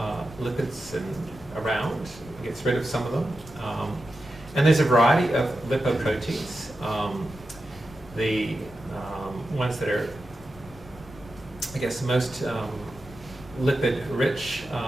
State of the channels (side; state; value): left; noise; rumble, 19 dB below the sound